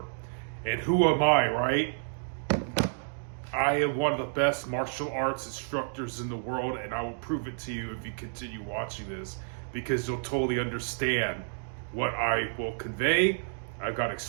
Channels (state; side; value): silent; left; digital silence